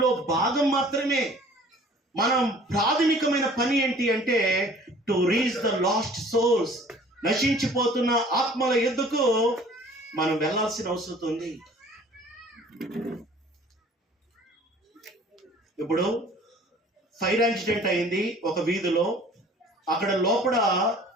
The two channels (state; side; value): normal; both; correlation 0.50